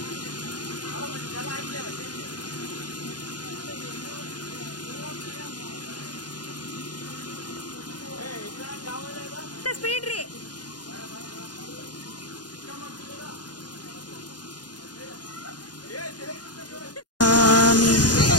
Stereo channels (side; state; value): right; late; 0.69 ms